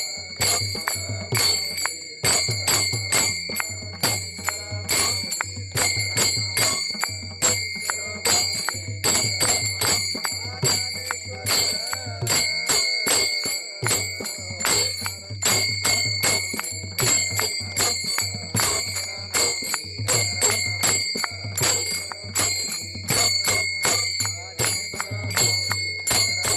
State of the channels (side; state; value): both; identical; correlation 1.00